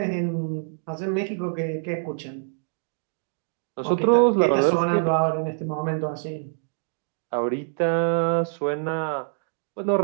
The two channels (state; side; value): silent; left; digital silence